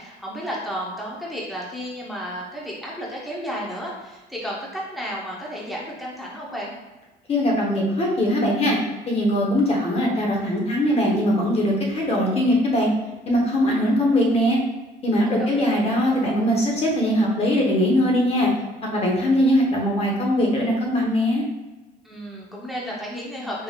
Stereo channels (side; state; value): both; normal; correlation 0.61